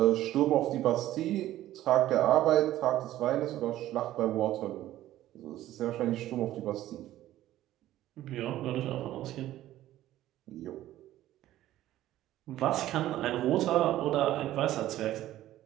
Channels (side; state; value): left; quieter; 14.1 dB